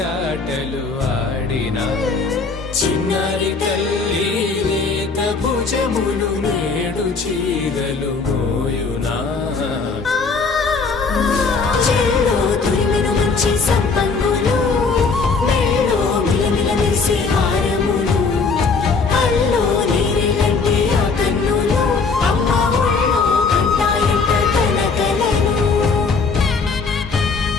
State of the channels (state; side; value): quieter; right; 4.6 dB